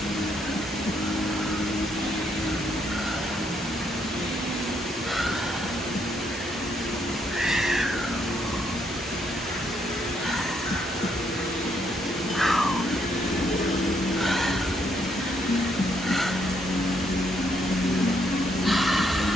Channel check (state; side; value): normal; both; correlation 0.73